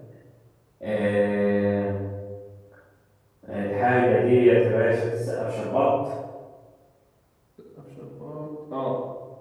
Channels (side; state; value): both; identical; correlation 1.00